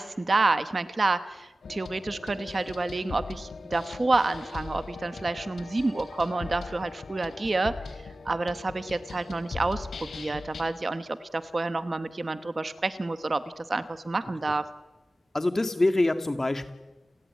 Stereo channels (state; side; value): normal; both; correlation 0.96